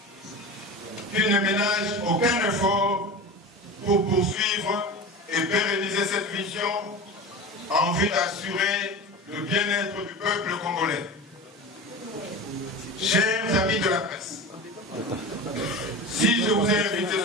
qu'il ne ménage aucun effort pour poursuivre et pérenniser cette vision en vue d'assurer le bien-être du peuple congolais. Chers amis de la presse, si je vous ai invité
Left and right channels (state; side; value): normal; both; correlation 0.30